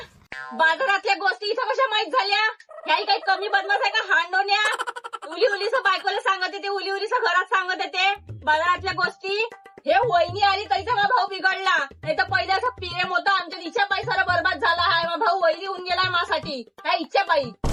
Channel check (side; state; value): both; identical; correlation 1.00